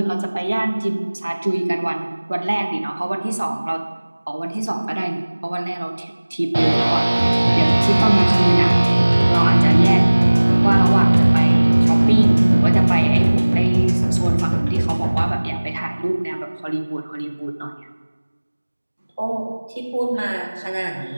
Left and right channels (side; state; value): both; inverted; correlation -1.00